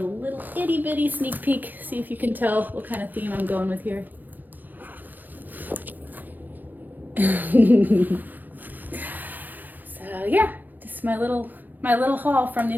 itty bitty sneak peek. See if you can tell what kind of theme I'm going with here. So yeah, just my little haul from the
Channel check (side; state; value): left; late; 0.085 ms